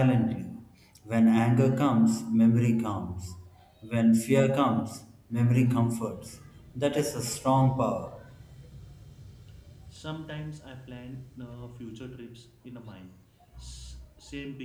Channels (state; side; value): identical; both; correlation 1.00